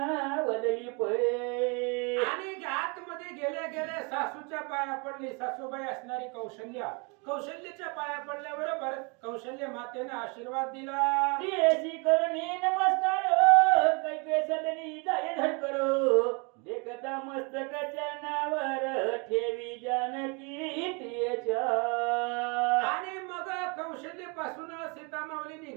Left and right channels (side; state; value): left; quieter; 32.3 dB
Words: वदली पळे. आणि आतमध्ये गेल्या गेल्या सासूच्या पाया पडली. सासूबाई असणारी कौशल्याच्या पाया पडल्याबरोबर कौशल्य मातेने आशीर्वाद दिला. ती करुणी नमस्कार कैके सदनी जाय धडकरो देखता मस्तक चरणावर ठेवी जानकी तिच्या. आणि मग कौशल्यपासून सीता माऊली